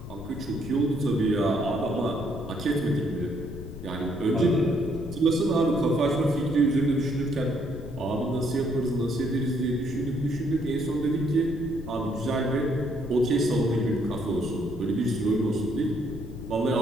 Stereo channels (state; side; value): noise; left; rumble, 11 dB below the sound